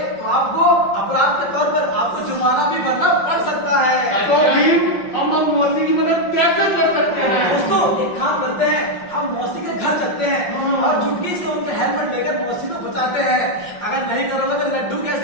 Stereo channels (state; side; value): late; right; 5.7 ms